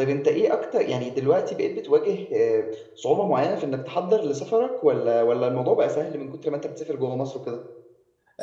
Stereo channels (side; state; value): both; identical; correlation 1.00